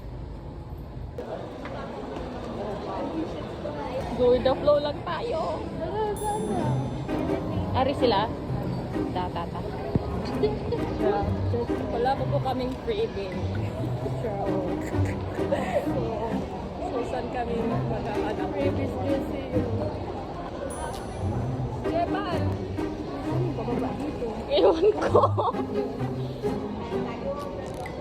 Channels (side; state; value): both; identical; correlation 1.00